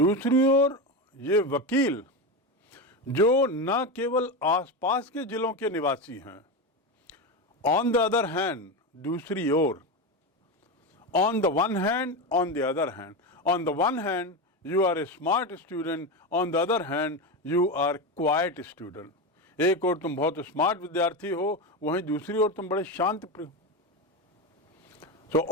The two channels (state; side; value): normal; both; correlation 0.17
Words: ओर ये वकील जो न केवल आसपास के जिलों के निवासी हैं, ऑन द अदर हैंड, दूसरी ओर, on the one hand, on the other hand. On the one hand, you are a smart student, on the other hand, you are quiet student. एक और तुम बहुत स्मार्ट विद्यार्थी हो, वहीं दूसरी ओर तुम बड़े शांत प्रिय। So